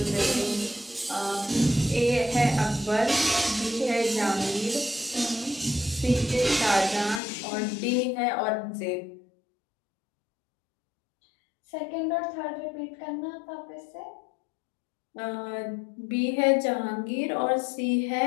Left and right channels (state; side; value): drops out; right; at 7.2 s